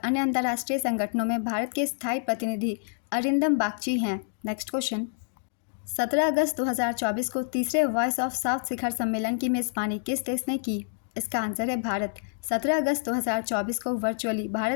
अंतर्राष्ट्रीय संगठनों में भारत के स्थायी प्रतिनिधि अरिंदम बागची हैं। नेक्स्ट क्वेश्चन, 17 अगस्त 2024 को तीसरे वॉइस ऑफ साउथ शिखर सम्मेलन की मेज़बानी किस देश ने की? इसका आंसर है भारत। 17 अगस्त 2024 को वर्चुअली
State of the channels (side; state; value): right; silent; digital silence